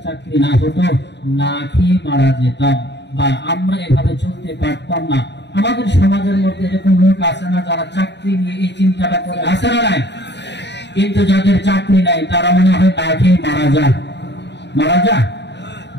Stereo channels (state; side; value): late; right; 0.51 ms